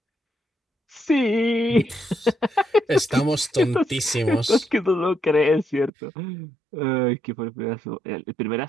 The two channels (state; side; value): drops out; left; at 5.9 s